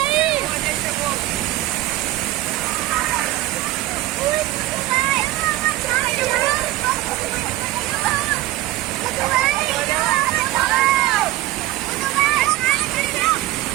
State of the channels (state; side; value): quieter; left; 16.4 dB